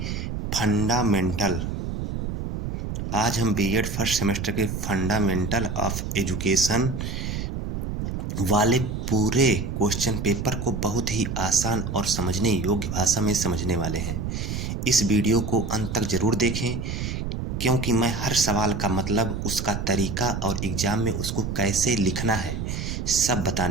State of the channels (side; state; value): right; noise; rumble, 4 dB below the sound